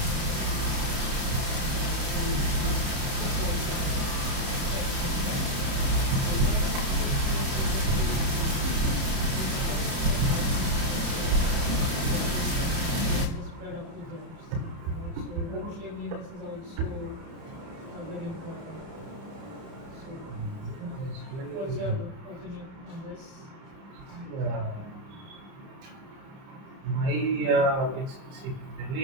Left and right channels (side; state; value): left; late; 30 ms